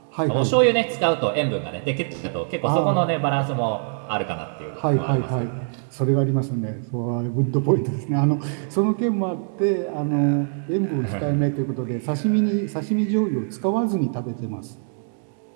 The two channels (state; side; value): silent; left; 63 dB below the other